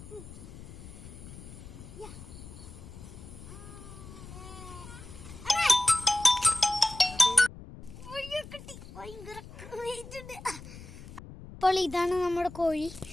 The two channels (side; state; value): left; noise; rumble, 15 dB below the sound